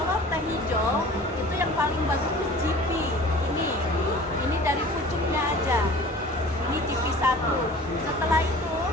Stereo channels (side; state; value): both; normal; correlation 0.44